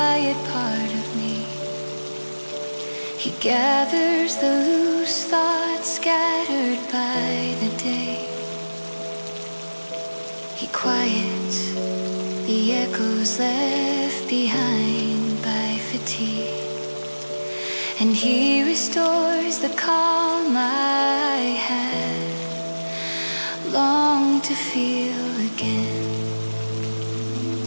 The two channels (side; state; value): both; inverted; correlation -1.00